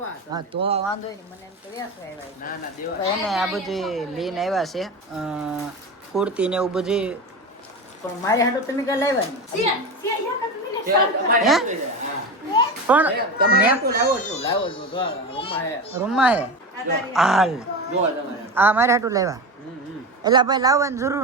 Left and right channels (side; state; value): both; normal; correlation 0.23